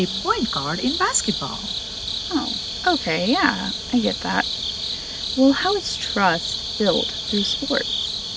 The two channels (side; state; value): both; identical; correlation 1.00